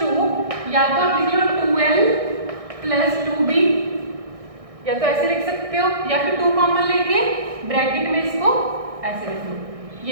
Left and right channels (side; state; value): left; late; 1.6 ms